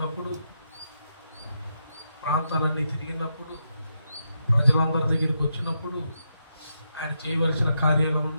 ప్రాంతాలన్నీ తిరిగినప్పుడు, ప్రజలందరి దగ్గరికి వచ్చినప్పుడు, ఆయన చేయవలసిన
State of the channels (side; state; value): both; inverted; correlation -0.82